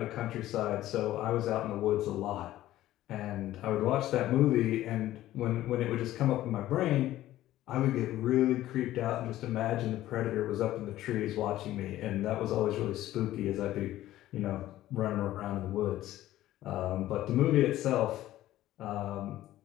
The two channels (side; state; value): right; quieter; 14.5 dB